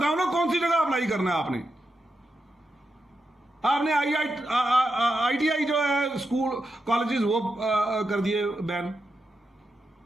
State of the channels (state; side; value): normal; both; correlation 0.86